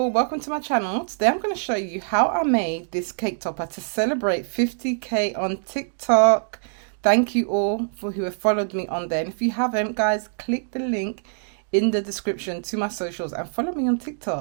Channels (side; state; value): left; silent; digital silence